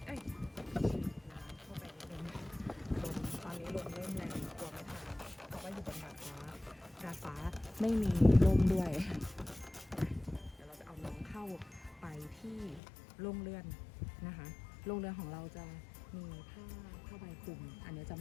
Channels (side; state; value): right; drops out; at 12.8 s